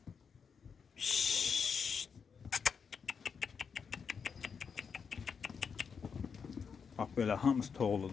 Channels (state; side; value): quieter; right; 6.2 dB